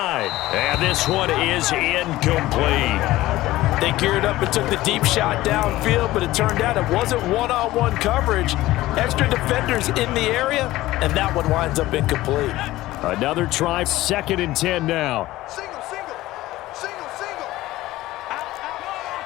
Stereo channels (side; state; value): right; quieter; 16.8 dB